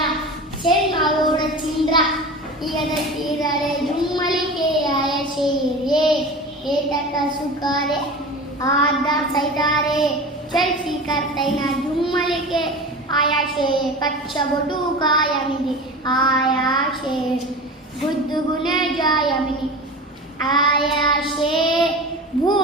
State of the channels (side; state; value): both; normal; correlation 0.32